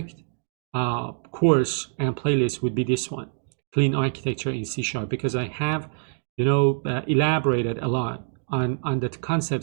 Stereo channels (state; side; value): silent; left; digital silence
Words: course and playlist would be this one, Clean Architecture in C#, because I have, elaborated a lot on the